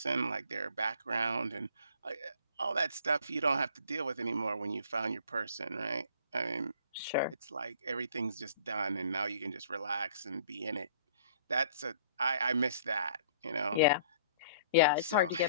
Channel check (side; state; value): both; inverted; correlation -0.54